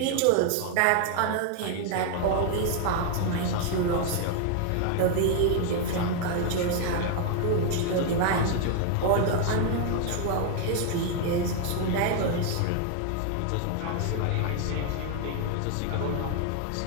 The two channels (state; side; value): different; both; correlation 0.00